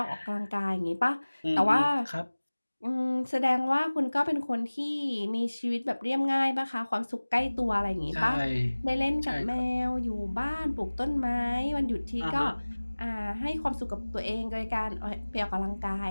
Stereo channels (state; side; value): inverted; both; correlation -1.00